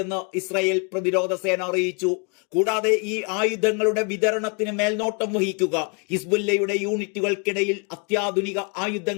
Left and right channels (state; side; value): quieter; right; 36.0 dB